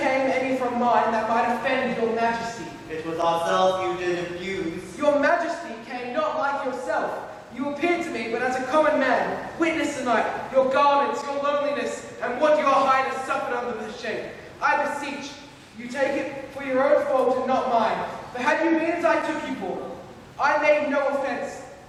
any from mine that might offend your majesty. It was ourselves you did abuse. Your majesty came not like yourself. You appeared to me but as a common man. Witness tonight your garments, your loneliness, and what your highness suffered under the shape. I beseech you take it for your own fault and not mine. For had you been as I took you for, I made no offence.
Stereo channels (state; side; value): identical; both; correlation 1.00